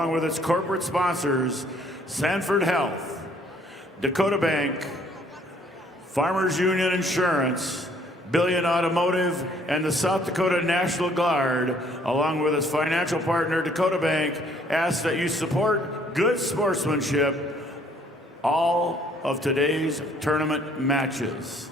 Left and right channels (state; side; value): normal; both; correlation 0.62